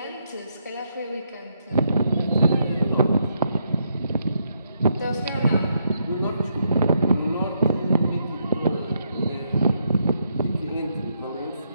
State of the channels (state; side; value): inverted; both; correlation -0.77